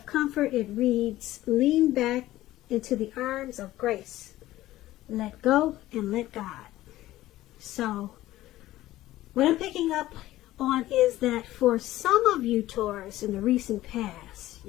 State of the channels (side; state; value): right; quieter; 15.6 dB